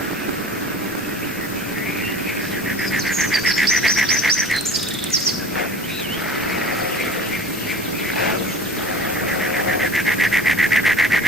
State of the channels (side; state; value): both; normal; correlation 0.42